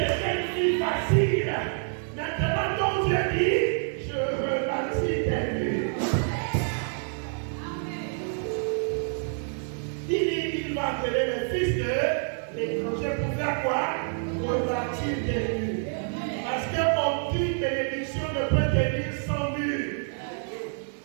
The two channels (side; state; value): left; silent; 60 dB below the other